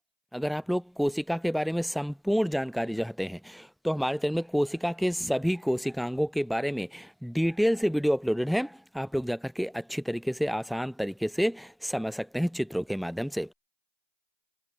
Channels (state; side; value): identical; both; correlation 1.00